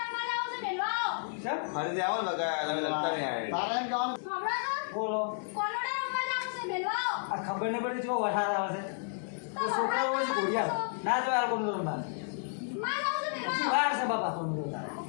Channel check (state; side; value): silent; right; 56 dB below the other